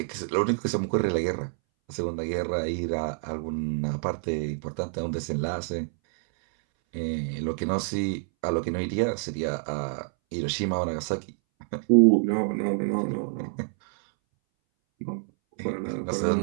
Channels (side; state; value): left; silent; 60 dB below the other